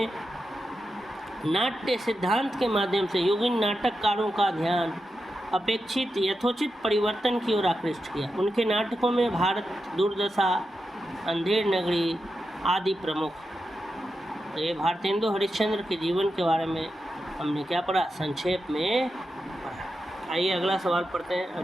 नाट्य सिद्धांत के माध्यम से युगीन नाटककारों का ध्यान अपेक्षित यथोचित परिवर्तन की ओर आकृष्ट किया। उनके नाटकों में भारत दुर्दशा, अंधेर नगरी आदि प्रमुख। ये भारतेंदु हरिश्चंद्र के जीवन के बारे में हमने क्या पढ़ा, संक्षेप में पढ़ा। आइए अगला सवाल पढ़ते हैं।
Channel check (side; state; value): both; normal; correlation 0.89